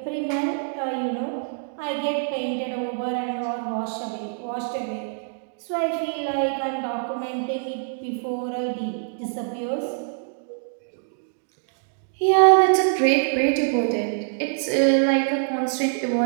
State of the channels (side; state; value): left; silent; digital silence